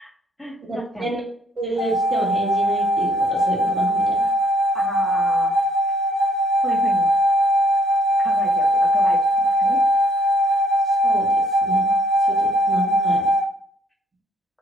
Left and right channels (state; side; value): normal; both; correlation 0.65